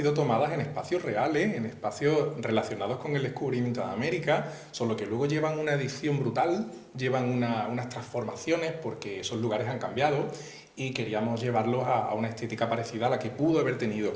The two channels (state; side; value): identical; both; correlation 1.00